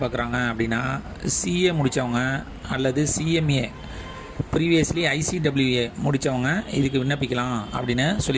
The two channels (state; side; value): identical; both; correlation 1.00